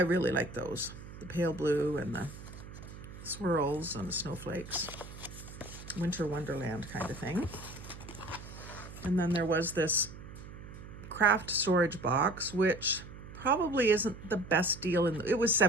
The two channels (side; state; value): right; noise; hum, 14 dB below the sound